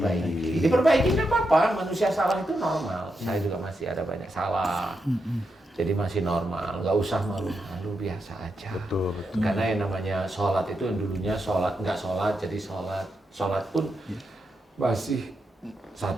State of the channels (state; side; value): normal; both; correlation 0.85